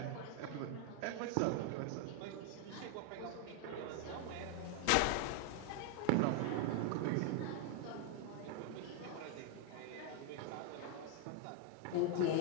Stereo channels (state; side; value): different; both; correlation 0.00